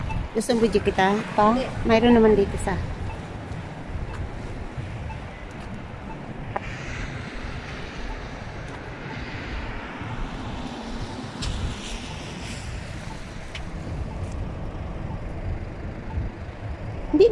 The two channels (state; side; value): identical; both; correlation 1.00